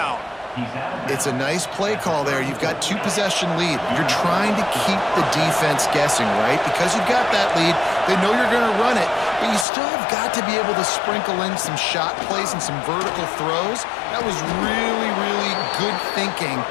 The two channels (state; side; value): drops out; right; at 9.7 s